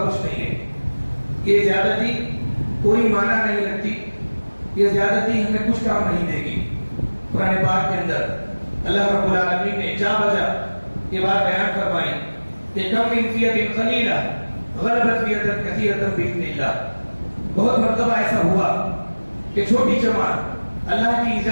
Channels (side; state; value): both; inverted; correlation -1.00